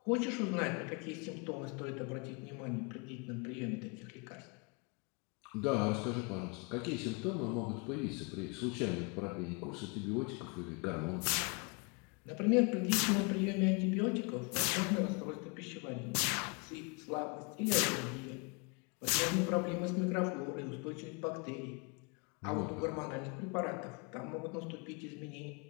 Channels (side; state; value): right; quieter; 32.5 dB